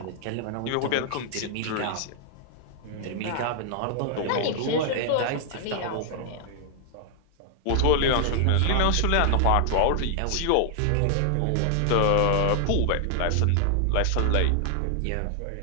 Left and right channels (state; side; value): different; both; correlation 0.00